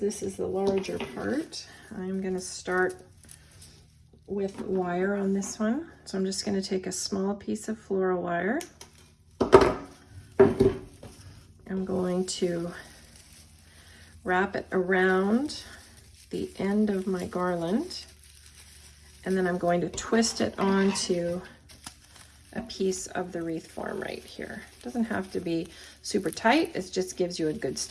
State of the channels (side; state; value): both; identical; correlation 1.00